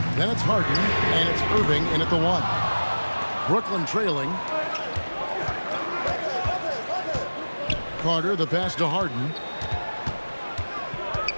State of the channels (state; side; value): inverted; both; correlation -1.00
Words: Then it's Harden. And it's Irving in at the 1. Brooklyn trailing. Carter, the pass to Harden.